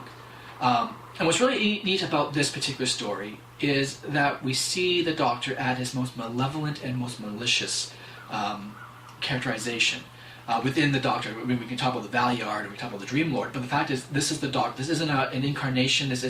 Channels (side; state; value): both; identical; correlation 1.00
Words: And what's really neat about this particular story is that we see the Doctor at his most malevolent and most malicious characterization. Within the Doctor, we can talk about the Valeyard, or we can talk about the Dream Lord, but the fact is, this is the Doctor. This isn't an incarnation, this